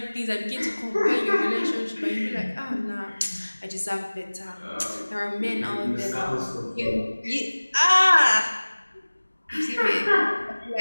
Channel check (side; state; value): both; inverted; correlation -1.00